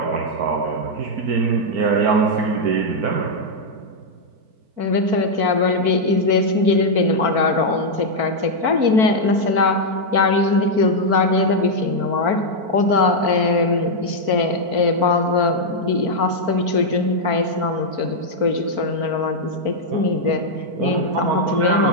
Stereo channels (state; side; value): late; left; 4.5 ms